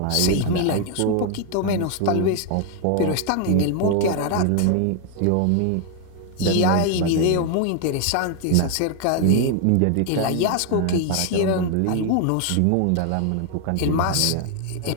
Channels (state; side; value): different; both; correlation 0.00